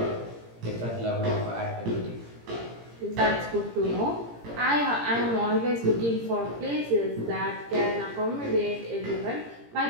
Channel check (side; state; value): left; late; 17 ms